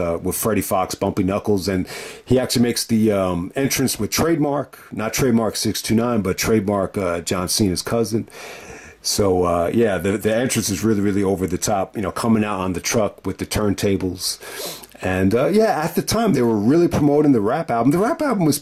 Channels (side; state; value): both; identical; correlation 1.00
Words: Freddie Fox, Bumpy Knuckles. And he actually makes the entrance with Trademark, not Trademark 629, but Trademark John Cena's cousin. So, yeah, the entrance is really over the top, you know, coming out on the truck with the turntables. And, yeah, at the time, they were really promoting the rap album. The rap album was